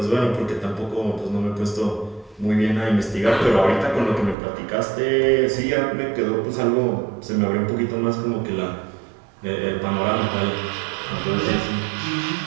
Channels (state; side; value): drops out; left; at 4.4 s